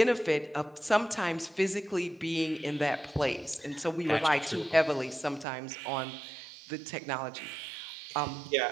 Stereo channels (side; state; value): left; drops out; at 5.5 s